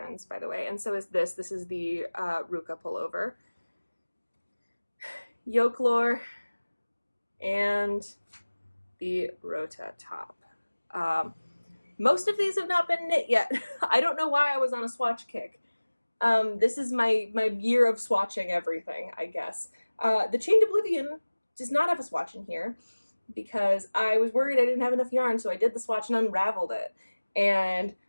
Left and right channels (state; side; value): inverted; both; correlation -1.00